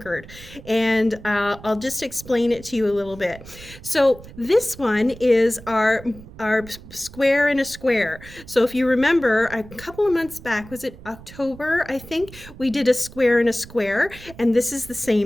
and I'll just explain it to you a little bit. So this one is our square in a square. So if you remember, a couple of months back, was it October, I think, we did a square in a square, and this is the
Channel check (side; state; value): right; noise; rumble, 18 dB below the sound